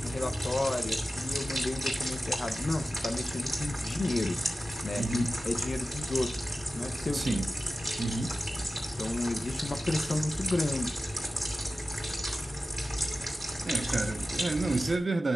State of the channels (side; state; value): both; normal; correlation 0.94